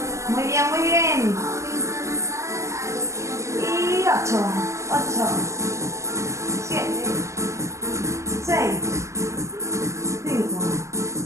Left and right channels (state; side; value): late; left; 0.15 ms